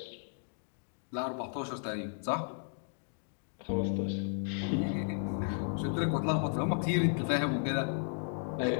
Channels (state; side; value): silent; right; digital silence